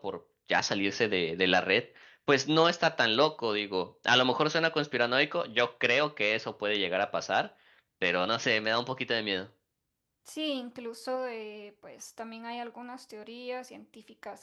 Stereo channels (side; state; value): both; identical; correlation 1.00